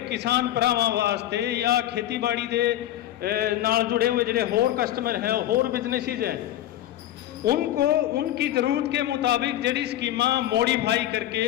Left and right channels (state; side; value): quieter; right; 13.2 dB